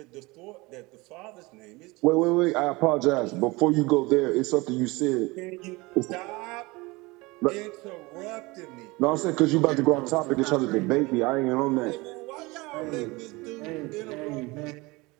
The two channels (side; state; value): left; quieter; 23.5 dB